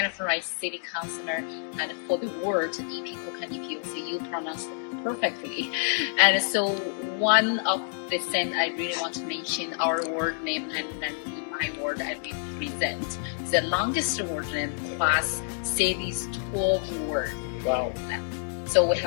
Rice, City Councillor, and for the word Epikuka Nipiotsi, you pronounce it perfectly. And so one of the things I really want to mention, our word name, and then in my word I represent the longest word name plus city's 12 word. Wow. So we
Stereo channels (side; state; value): right; silent; digital silence